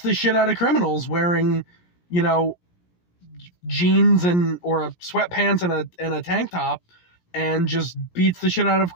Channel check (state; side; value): late; right; 17 ms